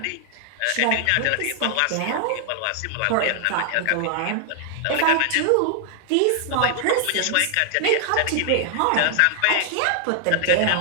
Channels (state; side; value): different; both; correlation 0.00